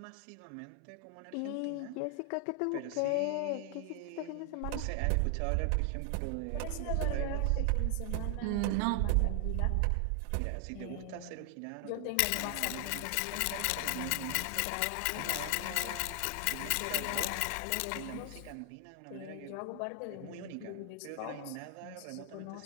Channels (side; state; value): both; different; correlation 0.00